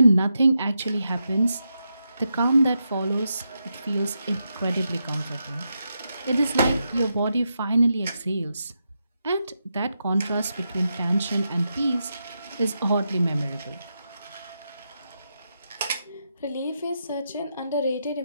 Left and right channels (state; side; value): inverted; both; correlation -0.85